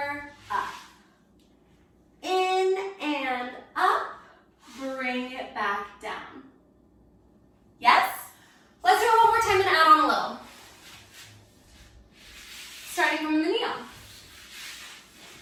up. In and up, bring it back down. Yes? Let's do it one more time and add on a little. Starting from the knee up.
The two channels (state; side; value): identical; both; correlation 1.00